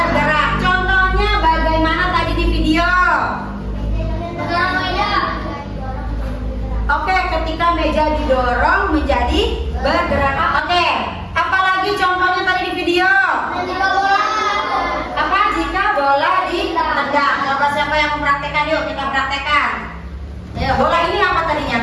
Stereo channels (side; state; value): both; identical; correlation 1.00